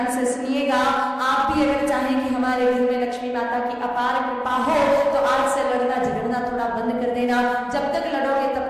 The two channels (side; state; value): both; identical; correlation 1.00